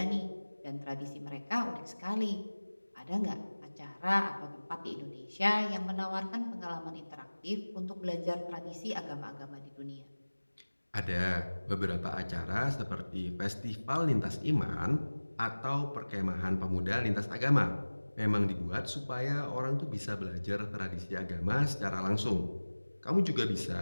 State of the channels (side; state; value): both; inverted; correlation -1.00